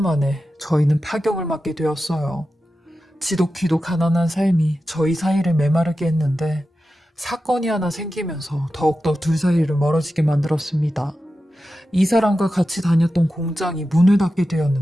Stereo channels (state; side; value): normal; both; correlation 0.92